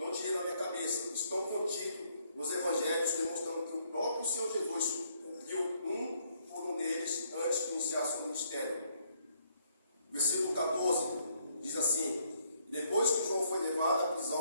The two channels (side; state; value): both; inverted; correlation -0.70